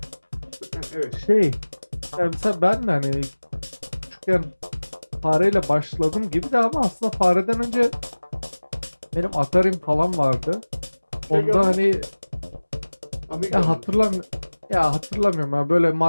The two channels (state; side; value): inverted; both; correlation -1.00